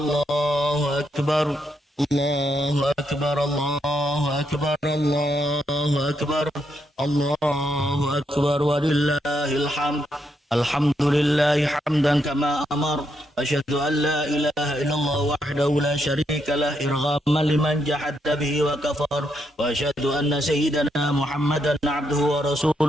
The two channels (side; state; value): both; normal; correlation 0.79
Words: akbar. الله أكبر الله أكبر الله أكبر الله أكبر ولله الحمد الحمد لله حمدا كما أمر أشهد أن لا إله إلا الله وحده لا شريك له إرغاما لمن جحد به وكفر وأشهد أن سيدنا محمدا عبده